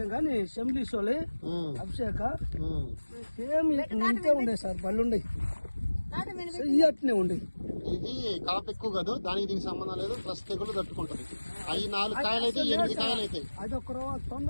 కానీ సెంబ్లీస్ వాళ్ళే అభిషేక సేమ్ ఇంతే ఉండే సార్ పళ్ళు ఉండే అట్నే ఉండే. ఇది కాపు ఎక్కువ కాదు, దానికి దీనికి సంబంధం లేదు. ప్లస్ తెగులు తట్టుకుంటది. అవి 4 కాయలు అయితే 8 కాయలు అయితే అది ఒక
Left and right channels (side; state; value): both; inverted; correlation -1.00